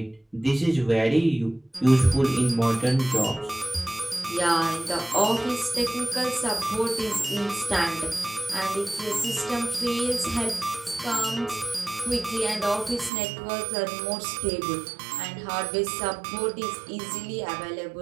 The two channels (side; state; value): left; drops out; at 13.1 s